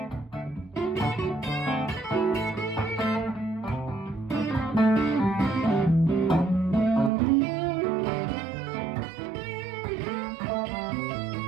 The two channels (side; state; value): left; drops out; at 7.1 s